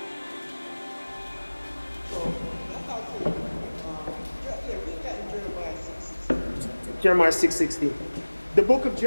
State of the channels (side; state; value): both; inverted; correlation -1.00